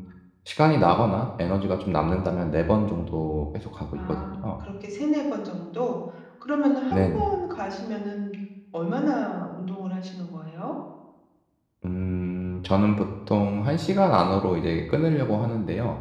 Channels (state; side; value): identical; both; correlation 1.00